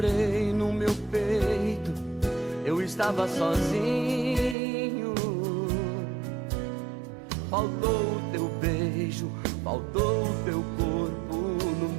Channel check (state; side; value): drops out; left; at 4.5 s